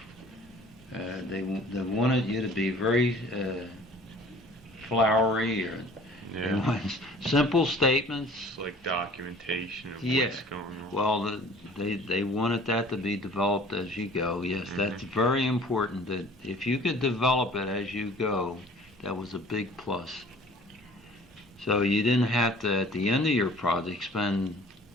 They wanted you to be very flowery, or they wanted simple statements. It's like documentation of what's going on. Well, they wanted that to be developed as you go. Yes, that's very important. That if you could develop it as you go, that was a big plus. So you didn't have to, at the end of your project, spend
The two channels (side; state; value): both; normal; correlation 0.49